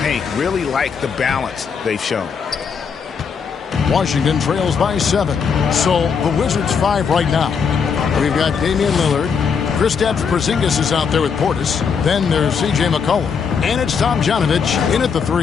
paint. Really like the balance they've shown. Washington trails by 7. So the Wizards 5 right now. We've got Damian Lillard. Kristaps Porzingis is out there with Portis. Then there's C.J. McCollum. And it's Tom Janovich in at the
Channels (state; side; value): quieter; right; 6.2 dB